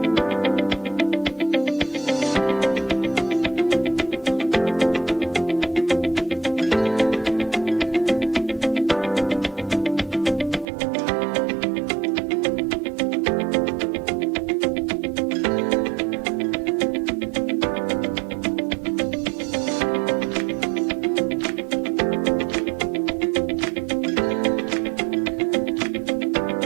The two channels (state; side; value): drops out; left; at 10.7 s